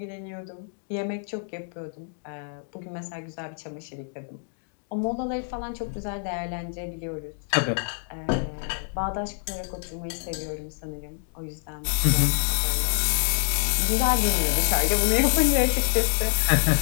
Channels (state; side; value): silent; right; digital silence